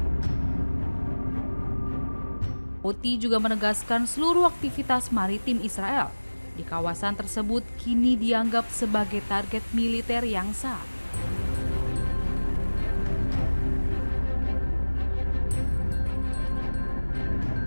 Houthi juga menegaskan seluruh aktivitas maritim Israel di kawasan tersebut kini dianggap sebagai target militer yang sah.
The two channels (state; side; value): inverted; both; correlation -1.00